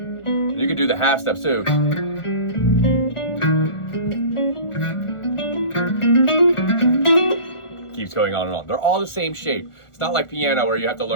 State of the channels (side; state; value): right; late; 1.4 ms